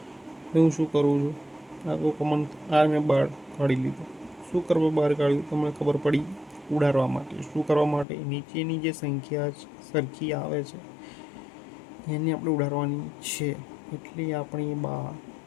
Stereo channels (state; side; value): drops out; right; at 8.1 s